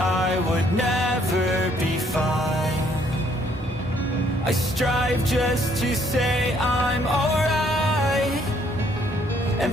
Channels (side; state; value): both; normal; correlation 0.66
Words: would never be fine. I strive just to say I'm alright,